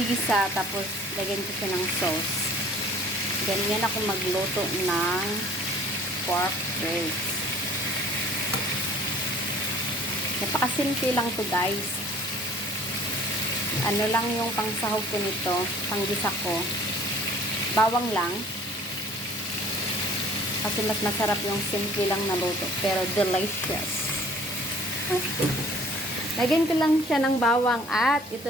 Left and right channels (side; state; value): both; normal; correlation 0.52